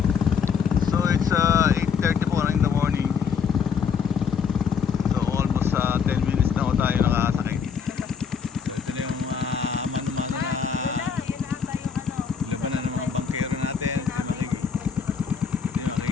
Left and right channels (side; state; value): right; quieter; 6.4 dB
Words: So it's 8:30 po in the morning. So almost 10 minutes na ho tayo nakasakay. So ito na yung mano-mano na labanan ng mga bangkero natin. Hindi